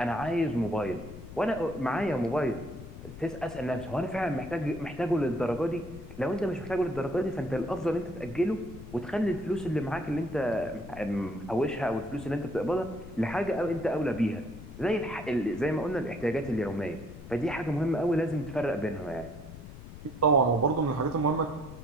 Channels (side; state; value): left; noise; rumble, 14 dB below the sound